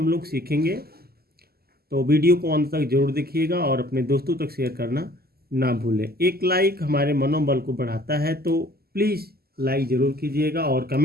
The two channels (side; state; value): left; late; 0.45 ms